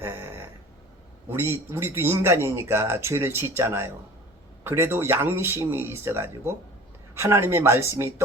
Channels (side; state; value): both; normal; correlation 0.43